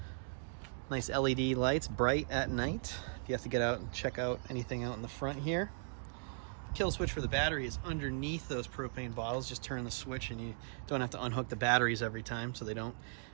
nice LED lights, bright at night. You have to get out and check out anything out in the front here. Kill switch for the battery is underneath those propane bottles. Just turn the switch and you don't have to unhook the batteries every time so they don't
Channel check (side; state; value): left; silent; digital silence